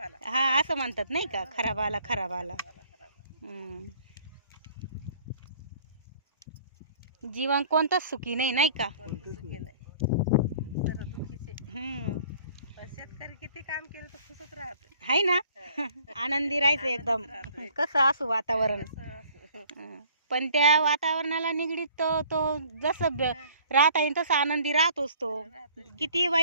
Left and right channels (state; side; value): inverted; both; correlation -0.55